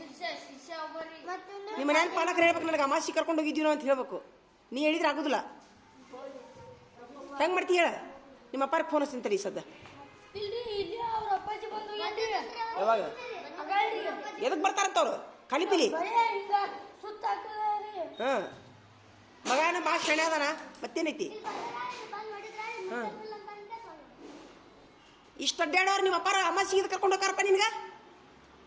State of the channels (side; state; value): both; identical; correlation 1.00